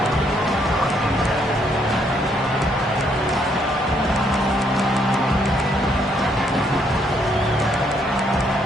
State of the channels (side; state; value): both; normal; correlation 0.71